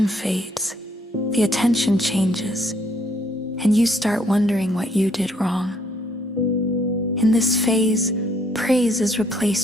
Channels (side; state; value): both; normal; correlation 0.67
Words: fades, the attention changes, and you start wondering what you did wrong. In this phase, praise is